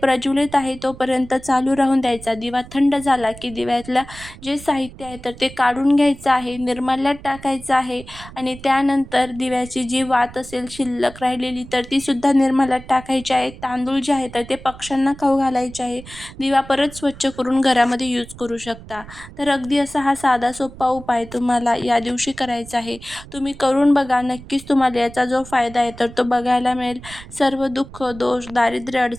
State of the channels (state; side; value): noise; right; rumble, 17 dB below the sound